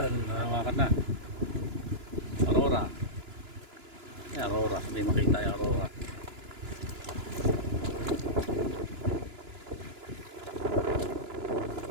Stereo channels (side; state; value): left; late; 2.9 ms